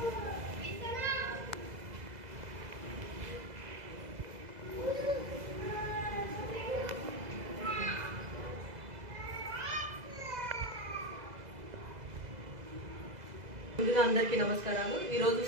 ముందుగా అందరికీ నమస్కారాలు. ఈరోజు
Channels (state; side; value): late; left; 2.0 ms